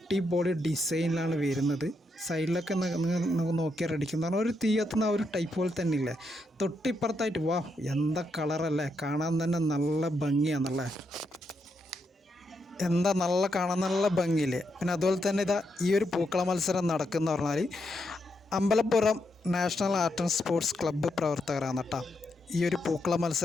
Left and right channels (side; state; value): both; normal; correlation 0.81